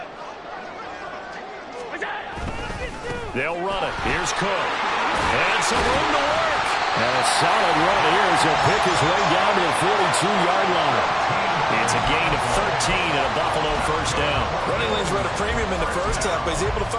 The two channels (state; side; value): identical; both; correlation 1.00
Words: They'll run it. Here's Cook. And some room to work. And a solid run here as he'll pick his way down to the 42-yard line. It's a gain of 13 and a Buffalo 1st down. Running lanes run a premium in the first half, but he's able to